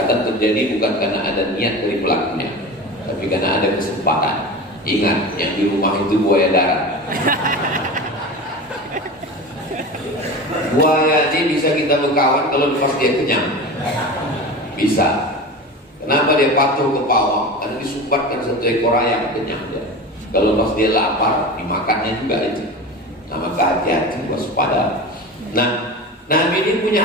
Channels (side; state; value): both; normal; correlation 0.30